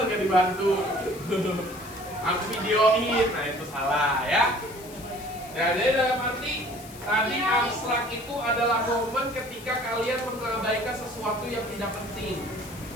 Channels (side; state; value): left; noise; hiss, 18 dB below the sound